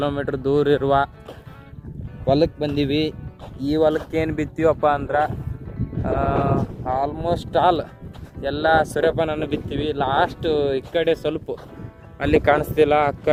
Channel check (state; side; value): identical; both; correlation 1.00